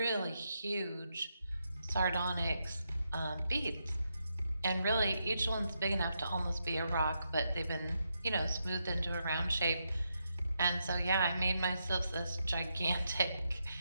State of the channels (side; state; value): both; inverted; correlation -0.83